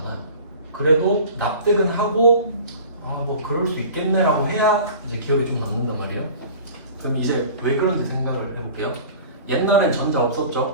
그래도 납득은 하고 아 뭐 그럴 수 있겠네라고 해야 이제 기억이 좀 남는단 말이에요. 그럼 이제 왜 그런지 생각을 해볼게요. 옛날엔 전자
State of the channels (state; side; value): inverted; both; correlation -0.41